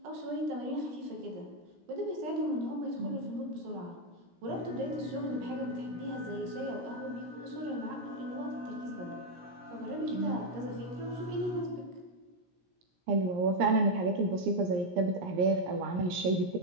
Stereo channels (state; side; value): late; left; 17 ms